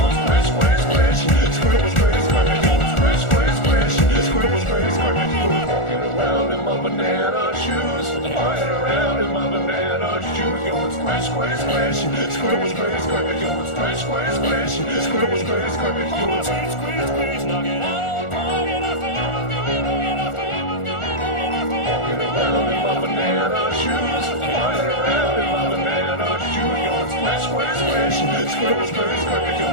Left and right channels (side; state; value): right; late; 1.4 ms